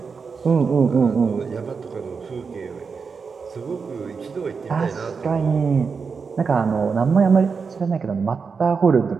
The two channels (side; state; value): left; quieter; 5.4 dB